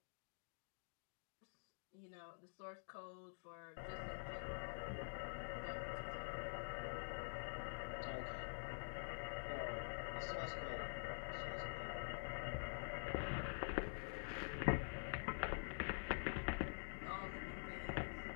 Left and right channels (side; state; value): right; silent; digital silence